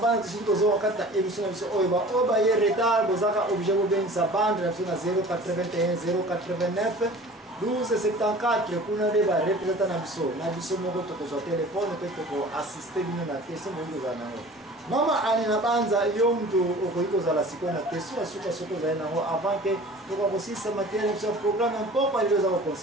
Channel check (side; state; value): both; normal; correlation 0.43